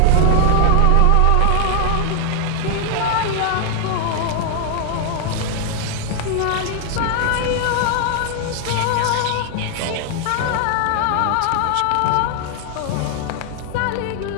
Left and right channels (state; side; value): different; both; correlation 0.00